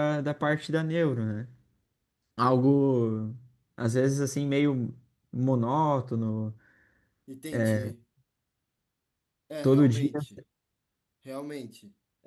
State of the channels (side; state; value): both; identical; correlation 1.00